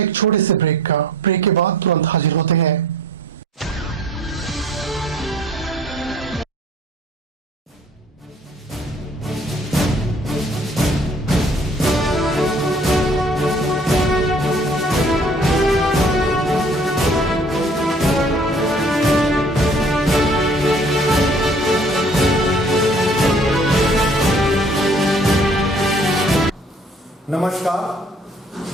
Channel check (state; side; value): normal; both; correlation 0.55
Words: एक छोटे से ब्रेक का। ब्रेक के बाद तुरंत हाजिर होते हैं। नमस्कार।